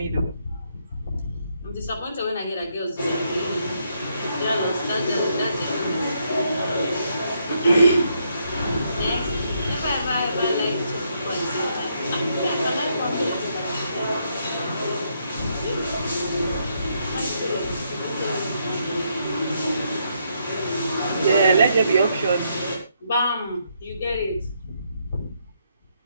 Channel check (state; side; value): inverted; both; correlation -0.76